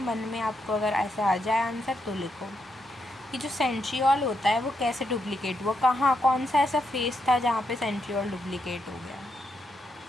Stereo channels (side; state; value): both; normal; correlation 0.81